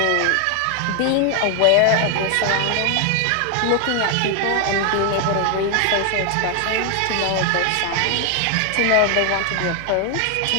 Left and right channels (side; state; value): both; different; correlation 0.00